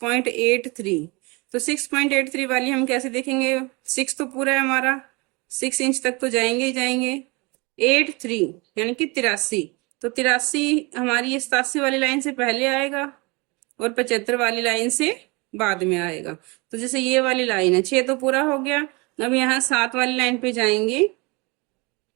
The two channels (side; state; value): left; quieter; 27.2 dB